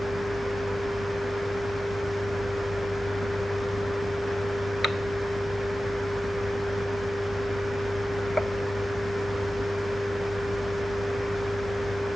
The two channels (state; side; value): normal; both; correlation 0.95